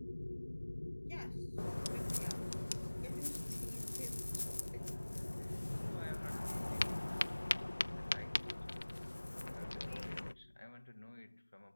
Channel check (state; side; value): inverted; both; correlation -1.00